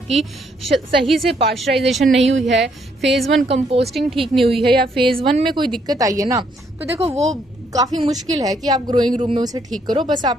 सही से पास्चराइजेशन नहीं हुई है, फेज 1 कंपोस्टिंग ठीक नहीं हुई है, या फेज 1 में कोई दिक्कत आई है ना, तो देखो वो काफ़ी मुश्किल है कि आप ग्रोइंग रूम में उसे ठीक करो। बस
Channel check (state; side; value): normal; both; correlation 0.71